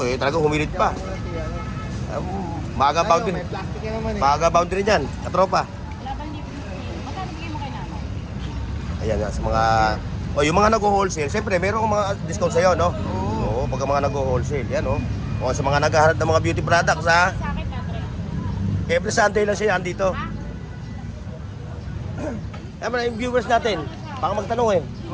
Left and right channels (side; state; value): both; identical; correlation 1.00